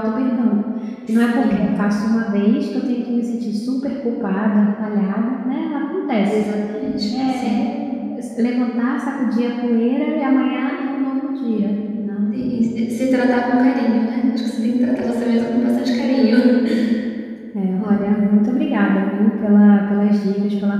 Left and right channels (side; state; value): both; identical; correlation 1.00